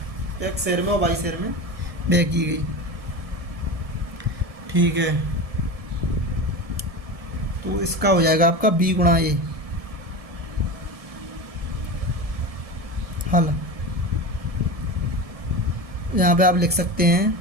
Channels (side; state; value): left; late; 1.7 ms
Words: 1 शहर में और 22 शहर में व्यय की गई, ठीक है। तो इसका हो जाएगा आपका B गुणा A। हल यहाँ पे आप लिख सकते हैं